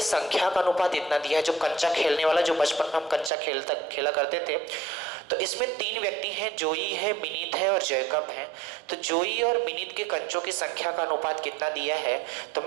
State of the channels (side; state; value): left; drops out; at 3.3 s